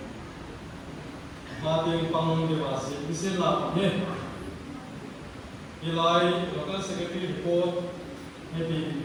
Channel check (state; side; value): identical; both; correlation 1.00